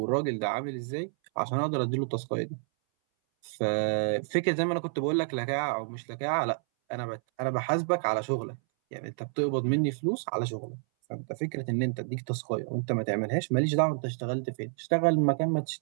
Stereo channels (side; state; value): left; silent; 58 dB below the other